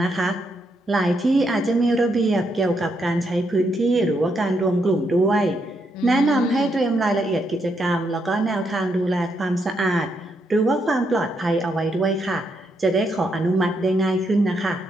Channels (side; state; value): both; normal; correlation 0.78